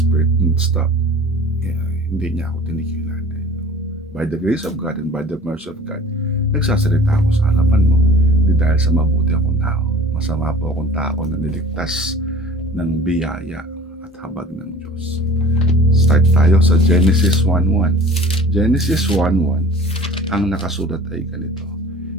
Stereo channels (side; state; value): both; normal; correlation 0.45